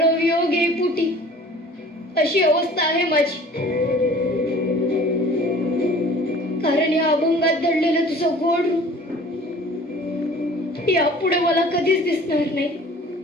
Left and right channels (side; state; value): both; normal; correlation 0.47